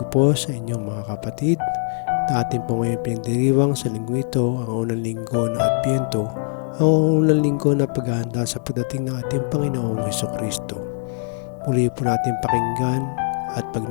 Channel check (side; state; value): right; silent; digital silence